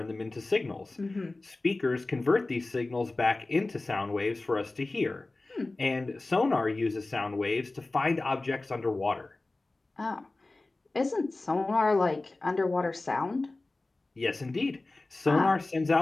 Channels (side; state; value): right; quieter; 3.1 dB